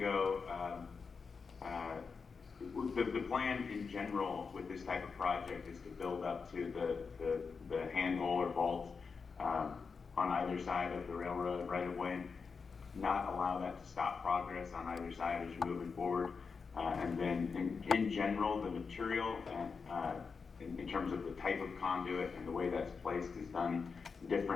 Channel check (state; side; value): quieter; right; 5.2 dB